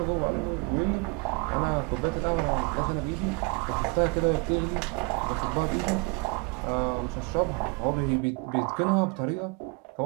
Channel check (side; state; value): left; quieter; 30.7 dB